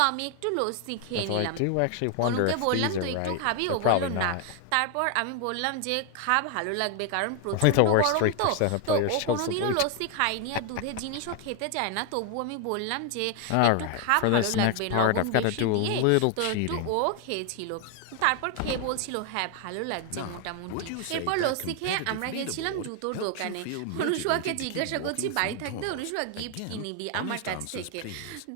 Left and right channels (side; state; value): both; different; correlation 0.00